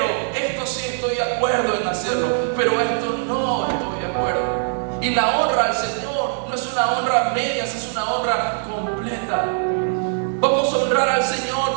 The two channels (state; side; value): silent; left; digital silence